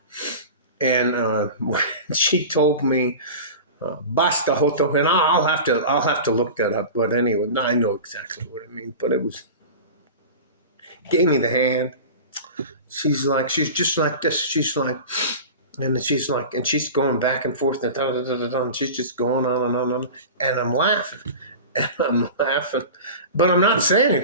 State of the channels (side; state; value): both; inverted; correlation -0.32